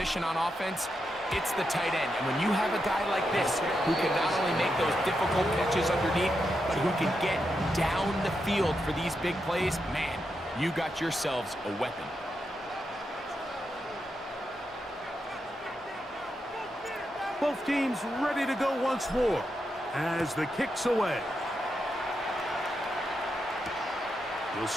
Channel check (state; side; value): normal; both; correlation 0.85